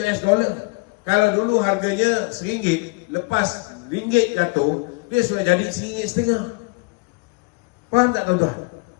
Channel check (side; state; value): right; quieter; 27.8 dB